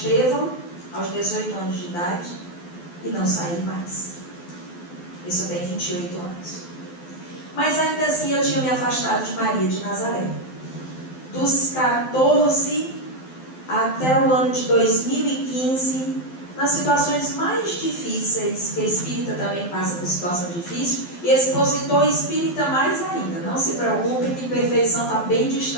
aos 18 anos de idade, e não saí mais. Isso eu tenho 28 anos. Mas ainda assim eu tinha me afastado de Maria de Nazaré. Dos 14 até o ano de 2015, nas situações mais difíceis, que a espírita também passa por situação difícil, e expositor espírita mais ainda. Não se preocupe que perfeição está bem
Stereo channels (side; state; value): right; late; 12 ms